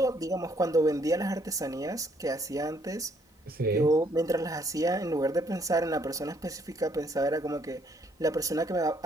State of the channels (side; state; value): both; normal; correlation 0.67